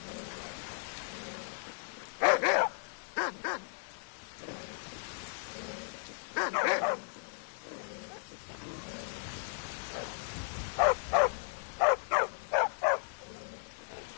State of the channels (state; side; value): silent; right; digital silence